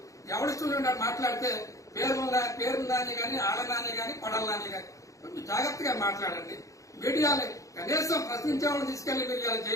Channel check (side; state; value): right; late; 0.16 ms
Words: ఎవరి చూడండి మాట్లాడితే పేరున్నాని కానీ, ఆళ్ళనాని కానీ, కొడల్లాని కానీ కొంచెం జాగ్రత్తగా మాట్లాడండి. మీడియాని కనీసం ప్రశ్నించే వాళ్ళని తీసుకెళ్లి మీరు ఇలా